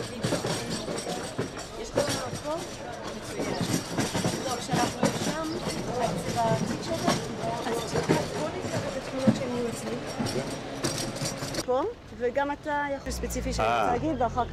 וגם אתה יכול ספציפי שאני רוצה להגיד, ואחר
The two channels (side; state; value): both; identical; correlation 1.00